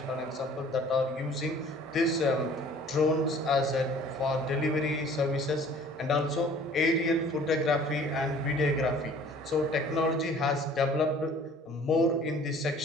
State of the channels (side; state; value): both; normal; correlation 0.51